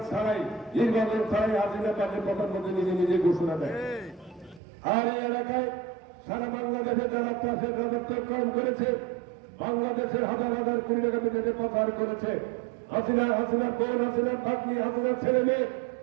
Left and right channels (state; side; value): drops out; left; at 4.6 s